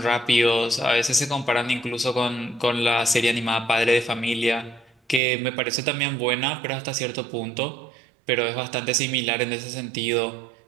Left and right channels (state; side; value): drops out; left; at 5.2 s